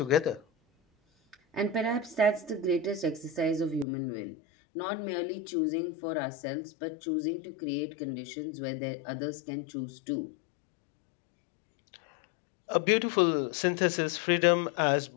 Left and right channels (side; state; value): right; drops out; at 3.9 s